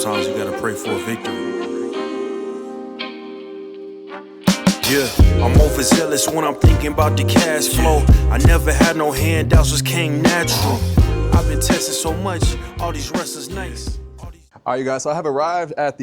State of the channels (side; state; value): both; identical; correlation 1.00